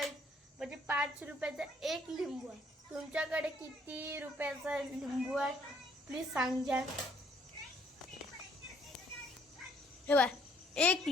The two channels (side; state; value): both; normal; correlation 0.64